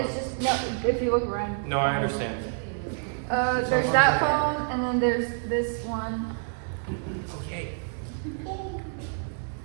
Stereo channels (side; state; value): left; silent; digital silence